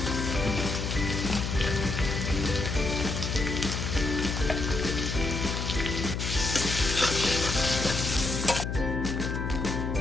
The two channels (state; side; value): noise; left; hum, 3 dB below the sound